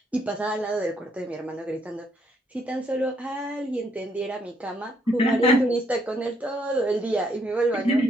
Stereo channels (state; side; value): normal; both; correlation 0.71